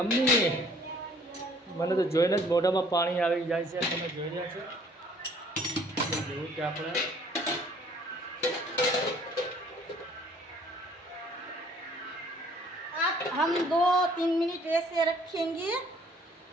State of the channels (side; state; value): both; normal; correlation 0.58